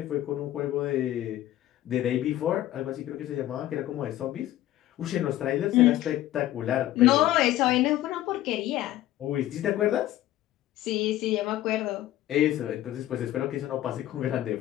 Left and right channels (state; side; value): quieter; right; 14.1 dB